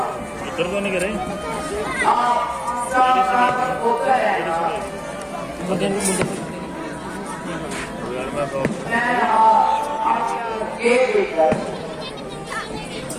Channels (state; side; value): identical; both; correlation 1.00